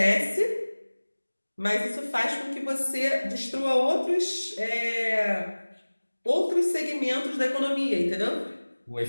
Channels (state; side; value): inverted; both; correlation -1.00